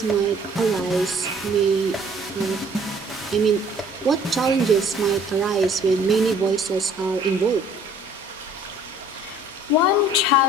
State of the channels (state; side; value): normal; both; correlation 0.55